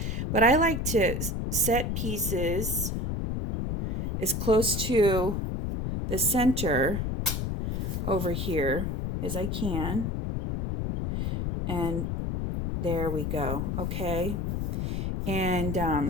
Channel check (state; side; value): noise; left; rumble, 1 dB below the sound